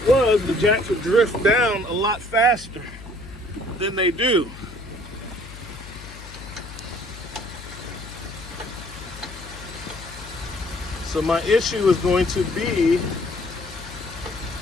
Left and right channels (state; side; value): noise; left; hum, 15 dB below the sound